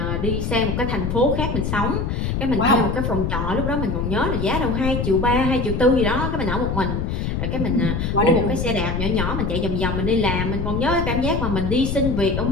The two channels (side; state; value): left; noise; rumble, 1 dB below the sound